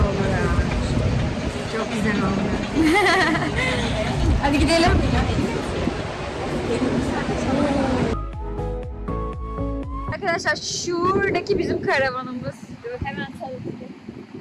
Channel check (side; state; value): both; identical; correlation 1.00